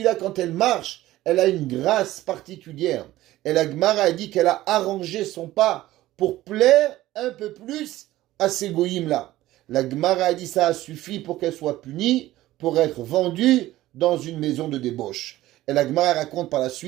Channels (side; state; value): left; quieter; 15.8 dB